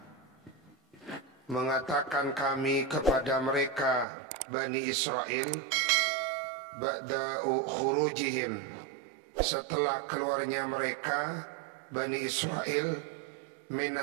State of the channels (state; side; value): drops out; left; at 4.0 s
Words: mengatakan kami kepada mereka Bani Israel ba'da khurujihim, setelah keluarnya mereka Bani Israel